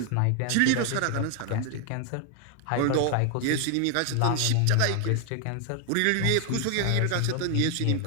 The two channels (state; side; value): different; both; correlation 0.00